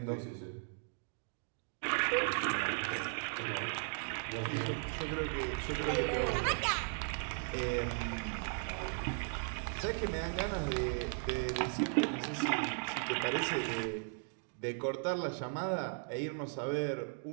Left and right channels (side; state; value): left; silent; 53 dB below the other